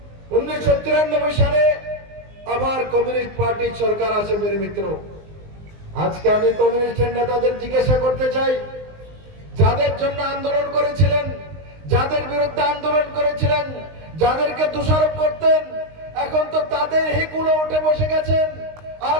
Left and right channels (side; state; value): left; late; 19 ms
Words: 1993 সালে আবার কমিউনিস্ট পার্টির সরকার আসে। মেরে মিত্র, আজকে আমি কমিউনিস্টের নেতাদের জিজ্ঞাসা করতে চাই, যাদের জন্য আন্দোলন করেছিলেন, যাদের বিরুদ্ধে আন্দোলন করেছিলেন, যাদেরকে দোষারোপ করতেন, এখন তো তাদের হিকুলো উঠে বসে গেছেন। আর